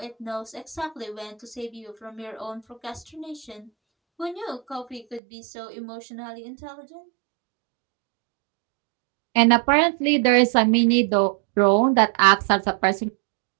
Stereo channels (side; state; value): left; drops out; at 5.2 s